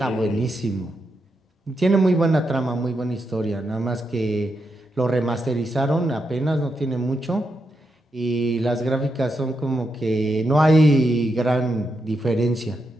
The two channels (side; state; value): both; normal; correlation 0.84